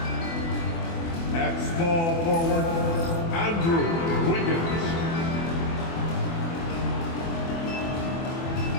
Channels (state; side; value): late; right; 24 ms